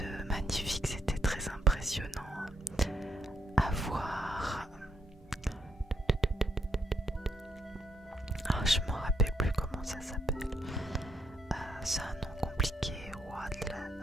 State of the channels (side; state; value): both; normal; correlation 0.74